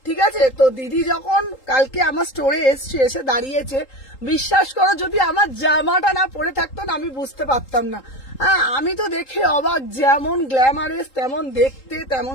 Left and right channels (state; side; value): late; right; 3.8 ms